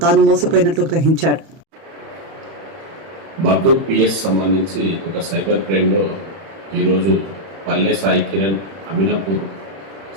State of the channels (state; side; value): late; left; 31 ms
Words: తాను మోసపోయినట్లు గ్రహించాడు. మర్దూర్ పిఎస్ సంబంధించి ఒక సైబర్ క్రైమ్లో ఈరోజు పల్లె సాయి కిరణ్ అమినాపూర్